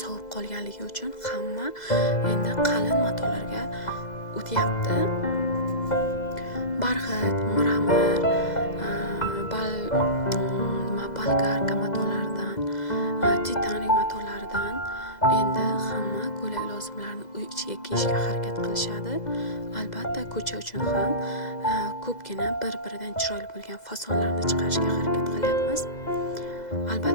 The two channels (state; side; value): late; right; 2.0 ms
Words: sovib qolganligi uchun hamma endi qalin matolarga o'tyapti. Barxit, miramir, bolgarka matolaridan, titanik matolaridan endi hamma ko'ylak lozimlarini uy ichiga kiyishga harakat qilishadi. Albatta ko'cha uchun ham ko'pgina bir-biridan chiroyli bo'lgan fasonlarni chiqarishga harakat qilyapmiz.